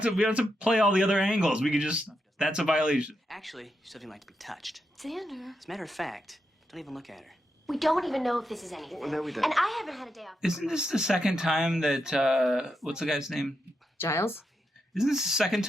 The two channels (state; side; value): normal; both; correlation 0.84